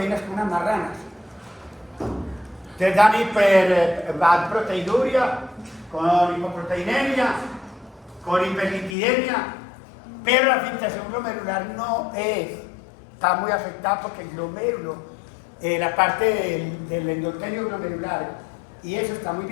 como unas marranas. Te dan hiperproteinuria, con hipoproteinemia, con hiperlipidemia, pero la filtración glomerular no está muy afectada porque el glomérulo, la parte del endotelio glomerular, y eso está muy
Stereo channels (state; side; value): drops out; right; at 9.0 s